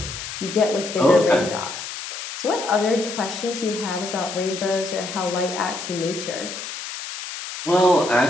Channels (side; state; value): left; noise; hiss, 8 dB below the sound